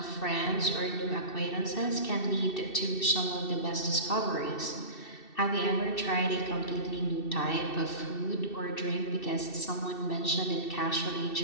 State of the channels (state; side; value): late; right; 2.7 ms